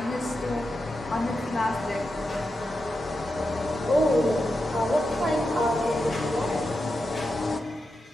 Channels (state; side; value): normal; both; correlation 0.88